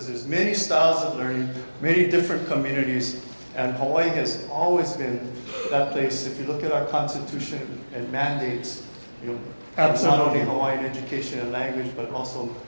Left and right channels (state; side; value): inverted; both; correlation -1.00